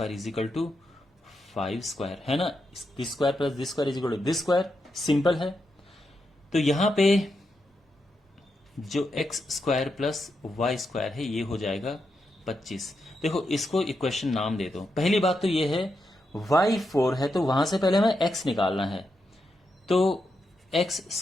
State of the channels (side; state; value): both; normal; correlation 0.85